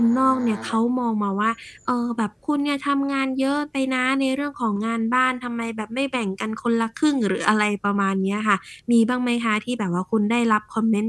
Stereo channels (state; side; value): identical; both; correlation 1.00